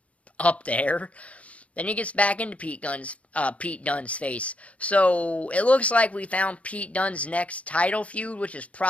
up there. Then he gets back into Pete Dunne's face. So it looks like we found Pete Dunne's next title feud, which is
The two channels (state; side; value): late; right; 0.065 ms